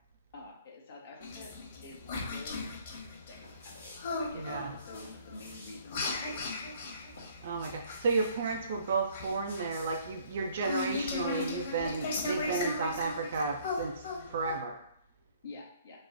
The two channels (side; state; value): both; inverted; correlation -0.59